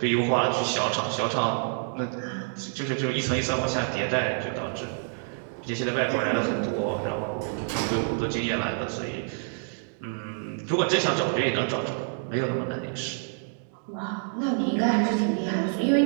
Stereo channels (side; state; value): left; silent; 60 dB below the other